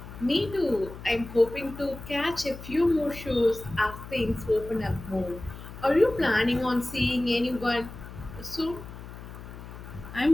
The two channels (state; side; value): noise; left; hum, 13 dB below the sound